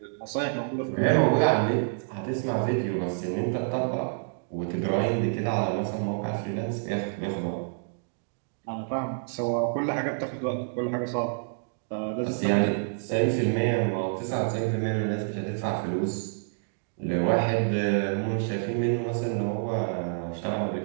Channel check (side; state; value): left; silent; digital silence